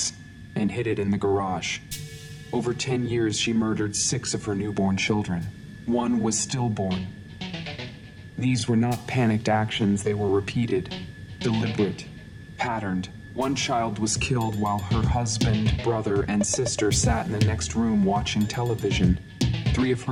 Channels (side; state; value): both; identical; correlation 1.00